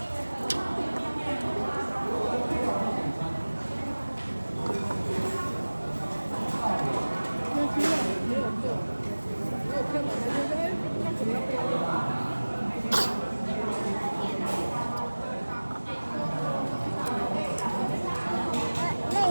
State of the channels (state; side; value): inverted; both; correlation -1.00